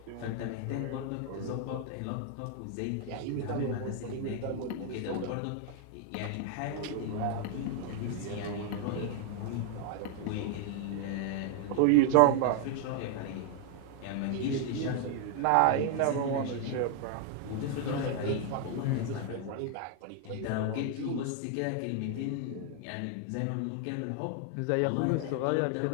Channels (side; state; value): both; different; correlation 0.00